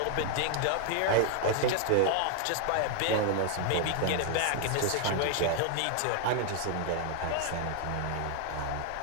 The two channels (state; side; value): different; both; correlation 0.00